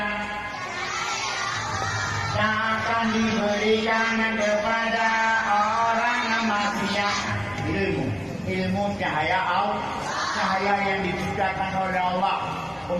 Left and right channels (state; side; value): identical; both; correlation 1.00